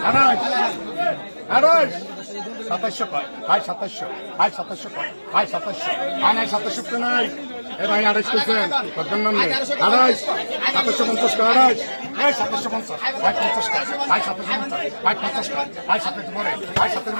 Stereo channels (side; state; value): both; inverted; correlation -1.00